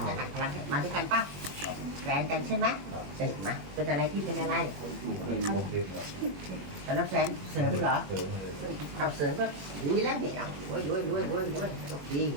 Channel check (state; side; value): late; left; 21 ms